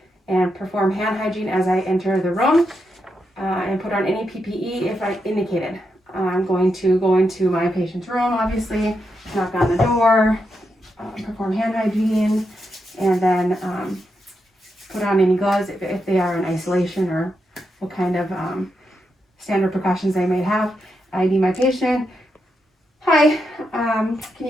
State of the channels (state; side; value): normal; both; correlation 0.84